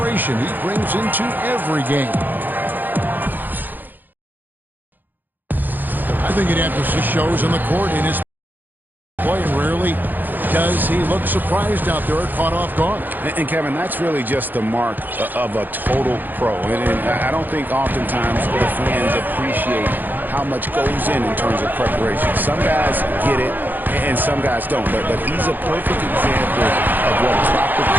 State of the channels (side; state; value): left; late; 0.088 ms